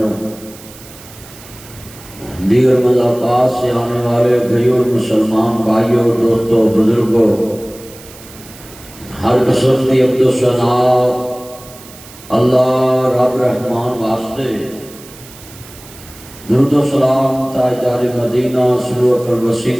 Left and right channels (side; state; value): right; noise; hiss, 19 dB below the sound